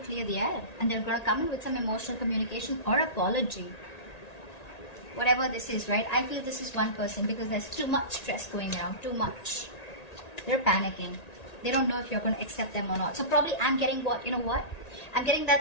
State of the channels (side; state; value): right; late; 1.9 ms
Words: the air. And they're going to come in with some emotional communication or apology. Whatever this is, right? I feel this is one person because there's too much stress going around, too much. They're panicking. They don't know if you're going to accept them or not. So probably I'm getting what, you know what? I'm getting